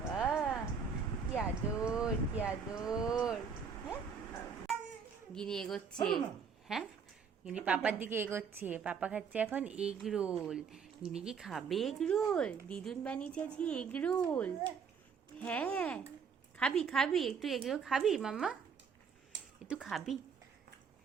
কি আদর, কি আদর। হ্যাঁ, গিনি এগোচ্ছে। হ্যাঁ, গিনি পাপার দিকে এগোচ্ছে। পাপা খাচ্ছে এখন এগ রোল। গিনি কি খাবে এগ রোল? দিদুন বানিয়েছে আজকে এগ রোল। হ্যাঁ, খাবি খাবি একটু এগ রোল খাবি মাম্মা? একটু খাবি,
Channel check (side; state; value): left; quieter; 6.2 dB